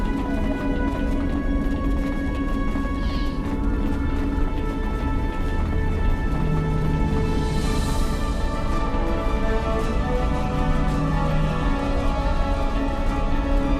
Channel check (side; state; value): both; identical; correlation 1.00